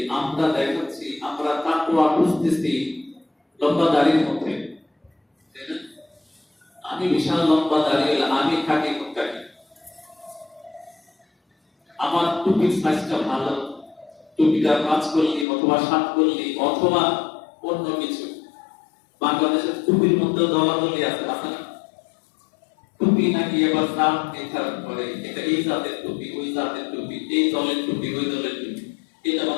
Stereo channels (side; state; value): right; drops out; at 15.5 s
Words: আমরা দেখাচ্ছি আমরা তাকওয়া খুঁজতেছি লম্বা দাড়ির মধ্যে, তাই না? আমি বিশাল লম্বা দাড়ি, আমি খাটি মুক্তাকি, আমার টুপির সাইজটা ভালো, টুপিটা 5 করলি অথবা 7 করলি অথবা অন্য কিছু। বাংলাদেশের টুপির মধ্যে দলাদলি আছে, আছে না? টুপি নাকি এবার দাম নির্ধারণ করে, এটা এই জাতের টুপি, ওই জাতের টুপি, এই দলের টুপি, ওই দলের টুপি, এটা